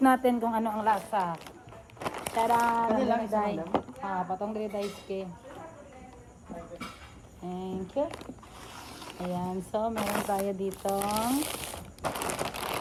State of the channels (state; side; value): identical; both; correlation 1.00